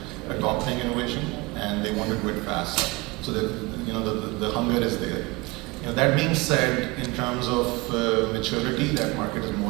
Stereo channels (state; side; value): quieter; left; 24.0 dB